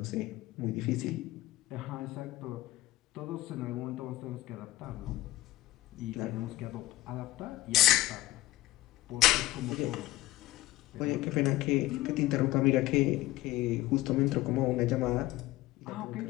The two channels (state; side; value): quieter; right; 17.0 dB